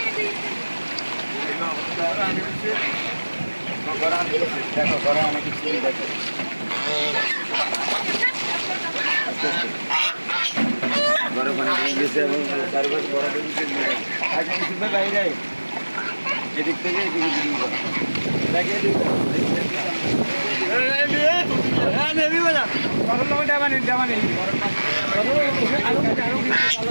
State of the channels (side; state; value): both; inverted; correlation -1.00